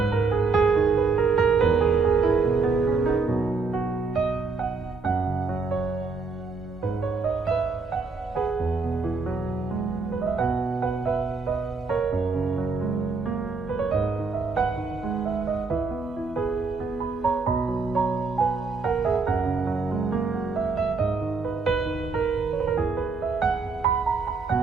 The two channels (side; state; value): left; quieter; 4.3 dB